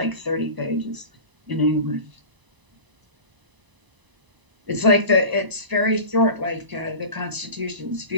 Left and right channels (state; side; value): late; left; 1.0 ms